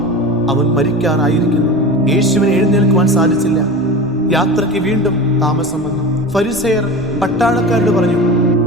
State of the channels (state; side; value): normal; both; correlation 0.30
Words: അവൻ മരിക്കാറായിരിക്കുന്നു. യേശുവിനെ എഴുന്നേൽക്കുവാൻ സാധിച്ചില്ല. യാത്രയ്ക്ക് വീണ്ടും താമസം വന്നു. ഫരിസേയർ പട്ടാളക്കാരോട് പറഞ്ഞു,